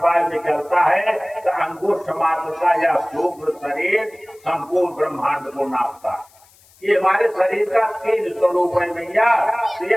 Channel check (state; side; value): noise; left; hiss, 29 dB below the sound